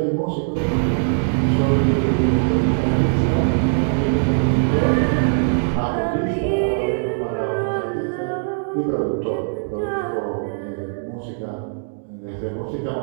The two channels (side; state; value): left; silent; digital silence